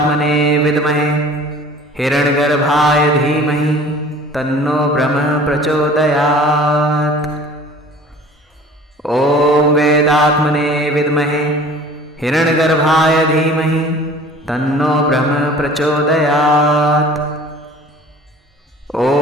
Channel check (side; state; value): both; normal; correlation 0.46